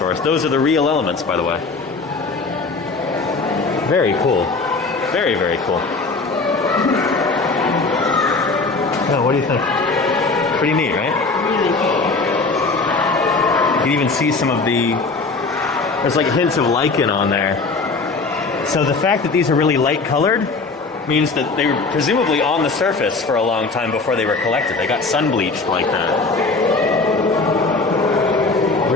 Those are the real elements, by the way. Very cool. Very, very cool. Oh, what do you think? Pretty neat, right? Really cool. You can even see some of the... There's like hints of lichen on there. So the fact that these are really light colored means that they were presumably on the surface for a long time before they were collected. They got sun bleached like that.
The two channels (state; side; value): quieter; right; 3.9 dB